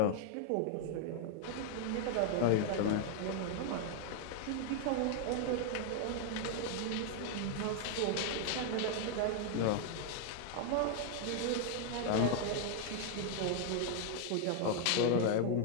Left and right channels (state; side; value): different; both; correlation 0.00